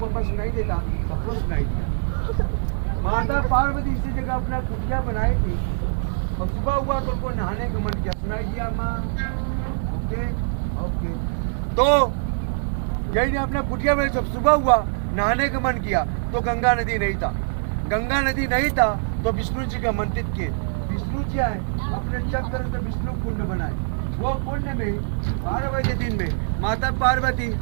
बस सुनाई देता, सबको सुनाई दिया। माता पार्वती इसी जगह अपना कुटिया बनाई थी और सुबह हुआ तो उनको नहाने का मन किया, सुनाई दिया माँ। ओके ओके, तो यही ने अपना कुटिया में जब सुबह हुआ नहाने का मन किया तो गंगा नदी नहीं था। गंगा नदी नहीं था तो विष्णु जी का मंदिर किए। विष्णु जी आए अपने चक्कर से विष्णु कुंड बनाए। वो कुंड में 12 बजे दिन में माता पार्वती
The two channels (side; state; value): left; silent; digital silence